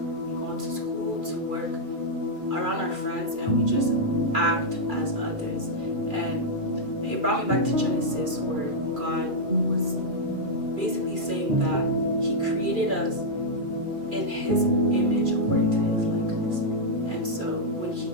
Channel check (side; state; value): left; late; 2.4 ms